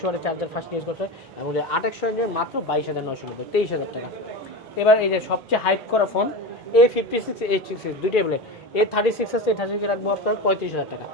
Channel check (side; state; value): both; normal; correlation 0.25